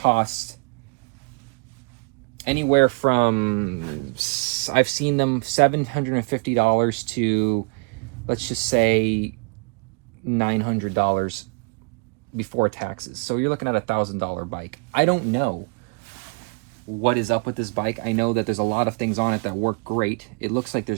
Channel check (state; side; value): quieter; left; 33.3 dB